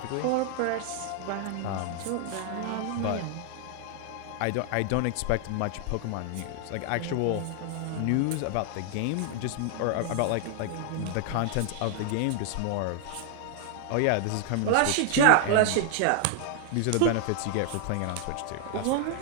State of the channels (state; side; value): different; both; correlation 0.00